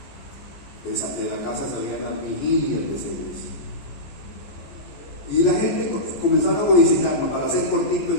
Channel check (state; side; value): late; right; 15 ms